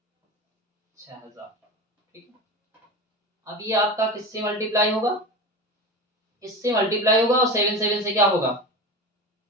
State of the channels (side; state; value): both; normal; correlation 0.27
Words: 6,000, ठीक है। अब ये आपका किससे मल्टीप्लाई होगा, इससे मल्टीप्लाई होगा, और 7 7 से क्या होगा,